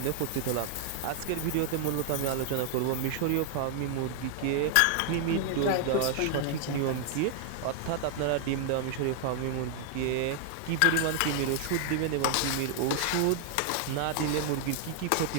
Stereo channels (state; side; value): different; both; correlation 0.00